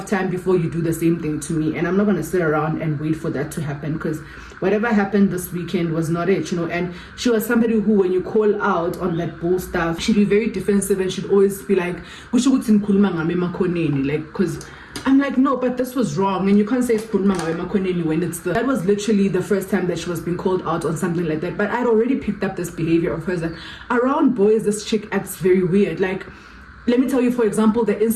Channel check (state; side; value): identical; both; correlation 1.00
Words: time before you do the same thing to me, and I'm not gonna sit around and wait for that to happen, because whatever happened this weekend was not it, you know. And she was somebody who, when you call out on that bull stuff, she'd be very defensive and she'd always be like, like, because I'm like, no, but this was wrong, and you can't say when it's that was literally the first time that she was being called out on something like that. But I'd already picked up this behavior of hers that around boys, this chick acts very weird. Like, let me tell you, for example, the